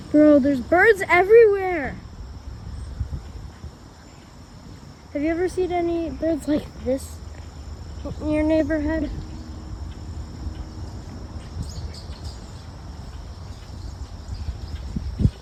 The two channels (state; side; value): identical; both; correlation 1.00